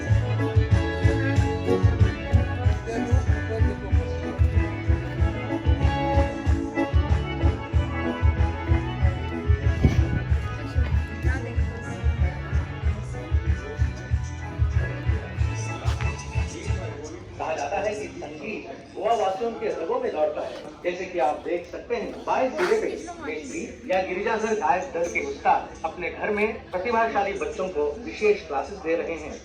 कहा जाता है कि संगीत गोवा वासियों के रगों में दौड़ता है। जैसे कि आप देख सकते हैं, बाएं सिरे पे मेस्त्री या गिरिजाधर गायक दल के उस्ताद अपने घर में प्रतिभाशाली बच्चों को विशेष क्लासेस दे रहे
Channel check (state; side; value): identical; both; correlation 1.00